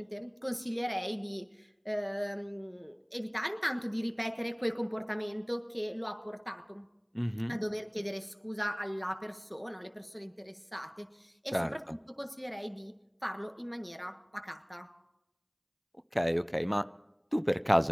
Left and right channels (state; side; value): identical; both; correlation 1.00